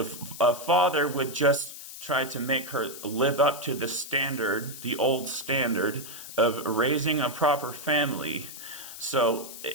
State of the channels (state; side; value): noise; left; hiss, 12 dB below the sound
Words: a father would just try to make her live up to the standard, the old standard of raising a proper family. So